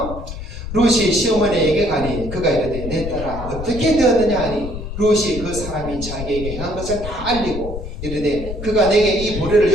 룻이 시어머니에게 가니 그가 이르되 내 딸아 어떻게 되었느냐 하니 룻이 그 사람이 자기에게 행한 것을 다 알리고 이르되 그가 내게 이 보리를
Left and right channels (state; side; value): noise; left; rumble, 8 dB below the sound